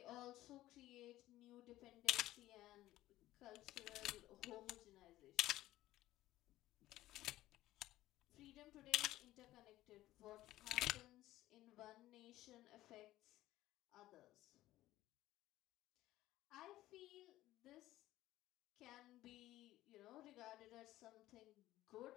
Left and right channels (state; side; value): quieter; right; 15.5 dB